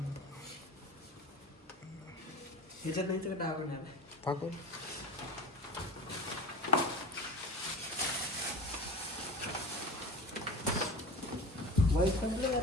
ह्याच्यात नाही का टाकून टाकू. वाईट संपलं का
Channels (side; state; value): both; normal; correlation 0.33